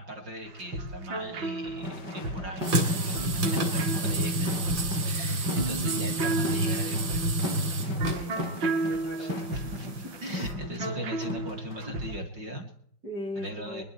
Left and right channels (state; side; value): late; left; 5.7 ms